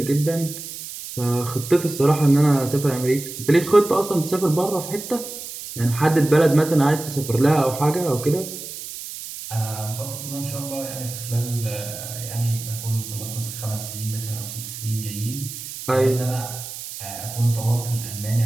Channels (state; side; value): noise; right; hiss, 10 dB below the sound